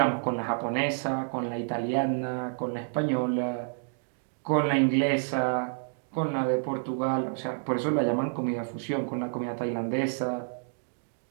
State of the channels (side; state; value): left; silent; digital silence